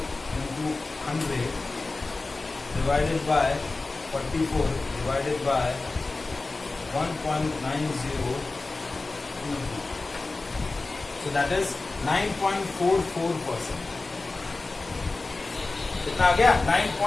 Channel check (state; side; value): quieter; right; 3.5 dB